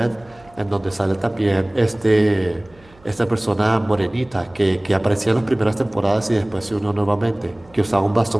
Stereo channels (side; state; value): right; noise; hum, 28 dB below the sound